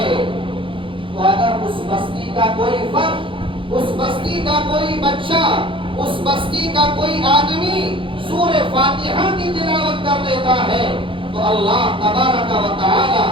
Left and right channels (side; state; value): left; late; 0.25 ms